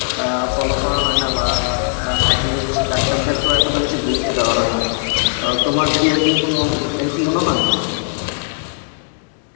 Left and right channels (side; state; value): right; silent; 67 dB below the other